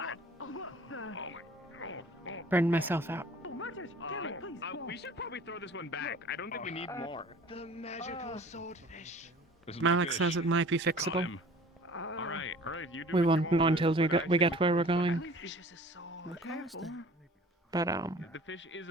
Burned myself out. We should probably throw this one back. I don't think we need more. The magical swordfish. Malik says it might be fixable. Alright, you do We what you won't know want. until we get where we're going. But The fish is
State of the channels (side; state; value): both; normal; correlation 0.46